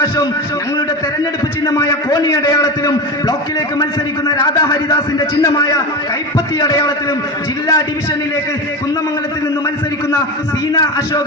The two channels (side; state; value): both; normal; correlation 0.23